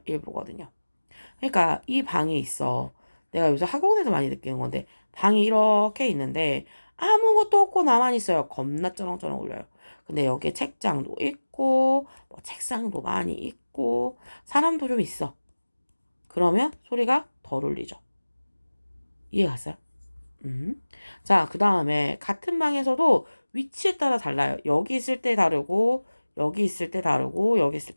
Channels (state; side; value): inverted; both; correlation -1.00